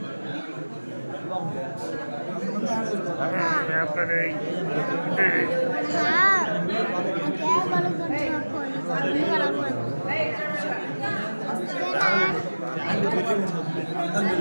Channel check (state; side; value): inverted; both; correlation -1.00